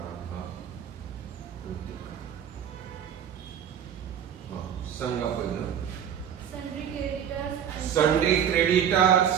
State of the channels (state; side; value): quieter; left; 8.9 dB